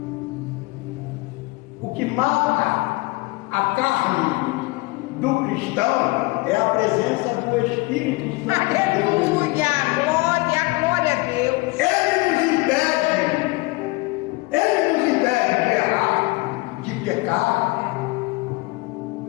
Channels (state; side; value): quieter; right; 24.0 dB